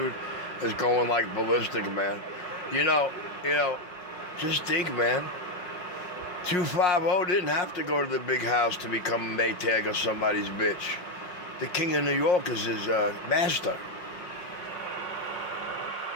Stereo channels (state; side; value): late; right; 5.6 ms